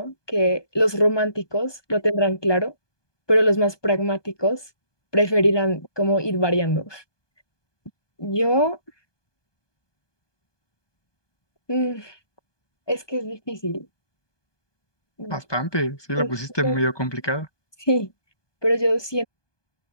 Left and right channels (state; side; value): late; right; 1.2 ms